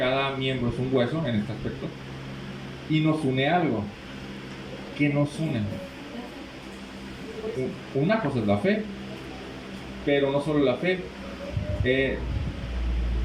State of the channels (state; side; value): identical; both; correlation 1.00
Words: miembro es un hueso en este aspecto. Y nos une algo. ¿Qué nos une? Una cosa es la fe, pero no solo la fe. ¿Se